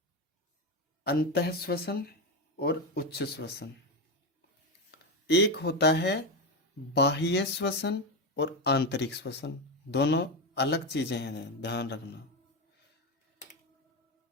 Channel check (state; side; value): normal; both; correlation 0.13